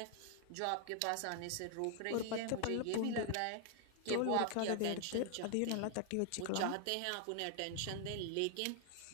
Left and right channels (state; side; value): different; both; correlation 0.00